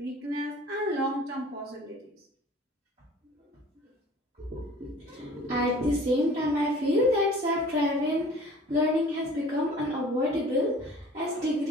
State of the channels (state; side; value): normal; both; correlation 0.48